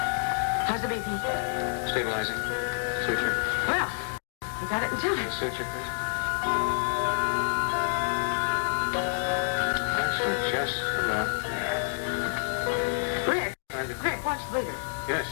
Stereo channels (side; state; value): right; silent; digital silence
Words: How's the BP? Stabilizing. Suture. Well, we got it in time. Suture, please. That's we're just about there. Rick, Rick, watch the bleeder. Yes,